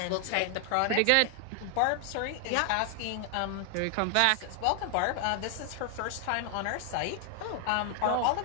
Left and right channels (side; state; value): both; different; correlation 0.00